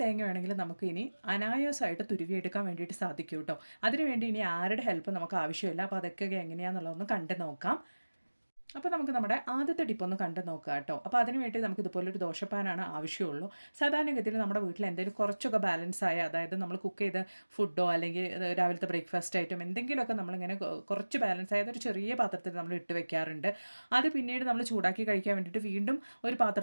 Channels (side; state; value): both; inverted; correlation -1.00